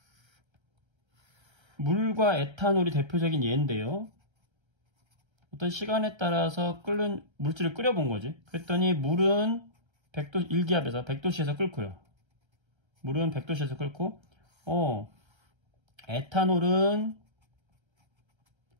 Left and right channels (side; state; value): left; late; 1.3 ms